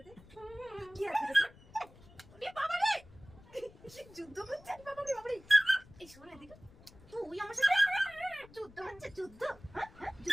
কি আছে এটাতে? বাবা রে যুদ্ধ করছে, বাবা রে বাবা রে। এই শোন এদিকে, তুই আমার সাথে যুদ্ধ হচ্ছে, যুদ্ধ?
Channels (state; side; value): noise; left; rumble, 23 dB below the sound